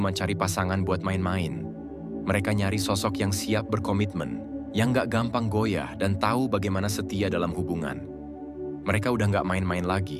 cari pasangan buat main-main. Mereka nyari sosok yang siap berkomitmen, yang gak gampang goyah dan tahu bagaimana setia dalam hubungan. Mereka udah gak main-main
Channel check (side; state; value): both; identical; correlation 1.00